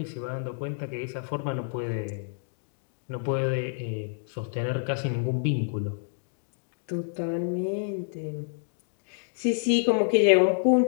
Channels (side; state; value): right; silent; digital silence